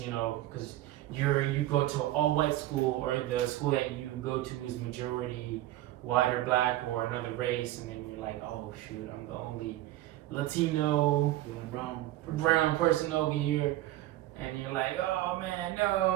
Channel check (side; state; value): left; quieter; 15.2 dB